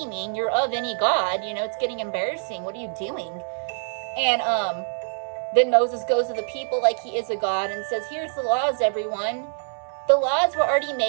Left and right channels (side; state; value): left; silent; 62 dB below the other